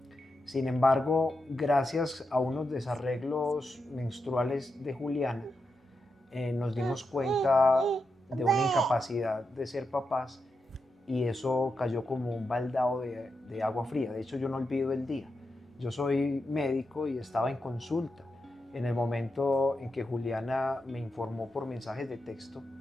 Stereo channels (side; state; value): both; normal; correlation 0.87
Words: Sin embargo, gracias a unos desarreglos menstruales de Juliana, nos dimos cuenta de una incapacidad de ser papás y eso cayó como un baldado de agua fría. De hecho, yo no olvido el día. Yo soy médico y estaba en consulta en el momento en que Juliana me informó por mensajes de texto